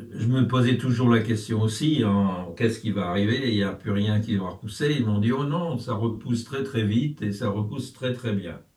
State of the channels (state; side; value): identical; both; correlation 1.00